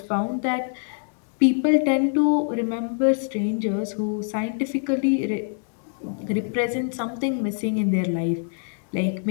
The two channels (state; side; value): silent; right; digital silence